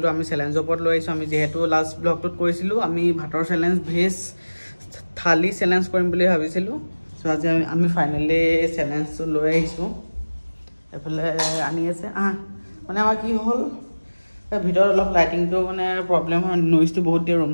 আমি চ্যালেঞ্জ ওপৰত লৈ আইছো আমি যেহেতু লাষ্ট ব্লগটোত কৈছিলো আমি ভাতৰ চ্যালেঞ্জ ভেজ থালি চ্যালেঞ্জ কৰিম বুলি ভাবিছিলো সো আজি আমি ফাইনালি চ্যালেঞ্জটো লৈ আইছো এফালে আনি আছে মানে আমাৰ কি হ'ল ভিডিওৰ অলপ লাইটিংটো মানে প্ৰবলেম হয় নইজটো বহুত দিয়ে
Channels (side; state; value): both; inverted; correlation -1.00